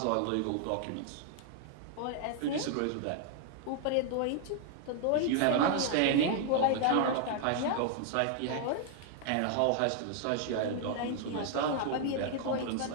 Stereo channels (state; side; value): different; both; correlation 0.00